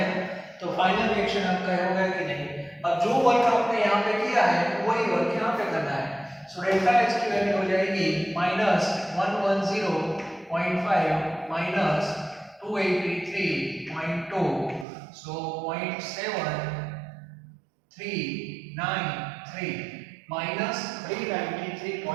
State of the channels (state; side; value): drops out; left; at 14.9 s